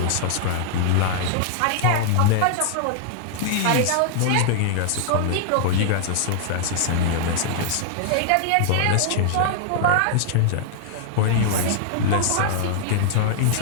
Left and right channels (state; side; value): different; both; correlation -0.01